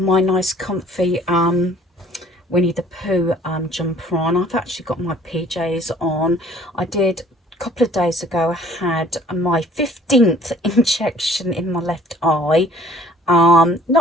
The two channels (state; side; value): normal; both; correlation 0.53